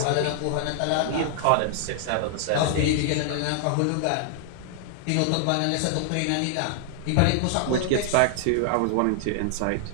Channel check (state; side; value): different; both; correlation -0.01